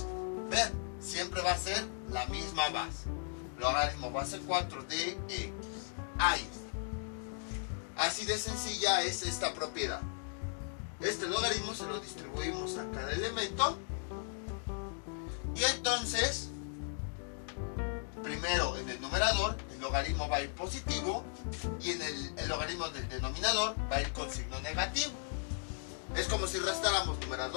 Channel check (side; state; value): right; silent; 53 dB below the other